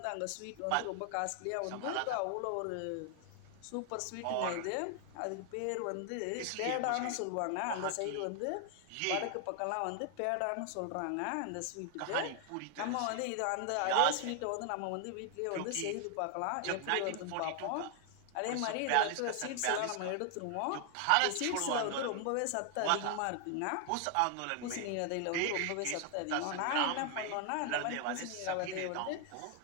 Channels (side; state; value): both; different; correlation 0.00